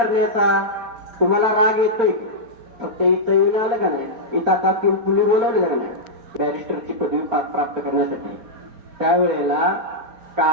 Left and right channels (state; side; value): late; left; 4.4 ms